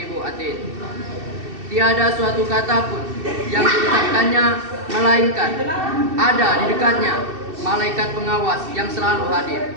atid. Tiada suatu kata pun yang diucapkannya melainkan ada di dekatnya malaikat pengawas yang selalu hadir.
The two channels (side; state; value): left; late; 2.7 ms